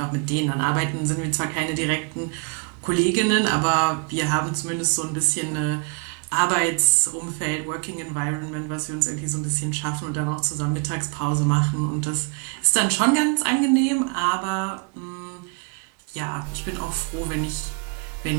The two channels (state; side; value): quieter; left; 35.1 dB